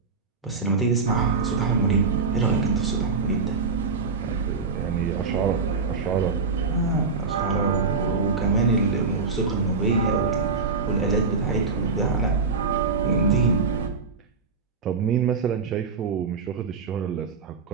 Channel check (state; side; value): quieter; left; 4.6 dB